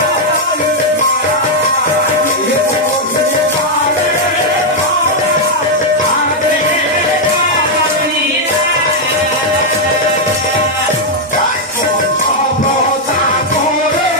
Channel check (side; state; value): both; normal; correlation -0.01